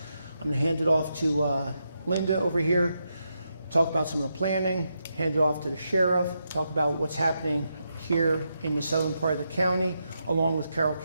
I'm going to hand it off to Linda over here, talk about some of the planning, hand it off to the sheriff, talk about what's happening here in the southern part of the county, along with Carroll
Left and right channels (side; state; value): both; inverted; correlation -0.84